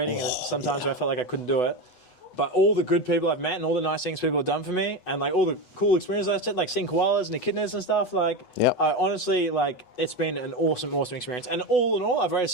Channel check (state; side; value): late; right; 8.1 ms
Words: and sometimes where I felt like I couldn't do it. But all the good people I've met and all the nice things people have done for me, and like all the cool experiences I've had, like seeing koalas and echidnas and stuff, like, honestly, like, it's been an awesome experience. And all in all, I've